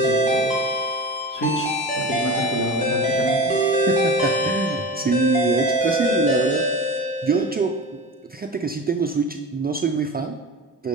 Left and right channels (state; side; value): normal; both; correlation 0.30